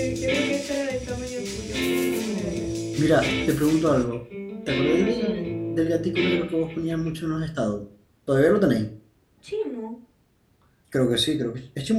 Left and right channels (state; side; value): identical; both; correlation 1.00